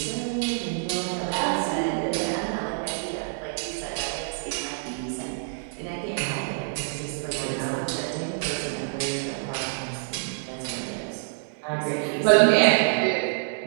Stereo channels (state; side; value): silent; left; digital silence